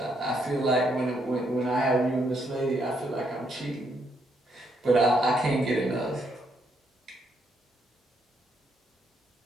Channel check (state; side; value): normal; both; correlation 0.75